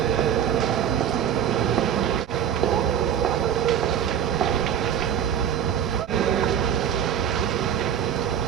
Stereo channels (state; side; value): quieter; left; 9.1 dB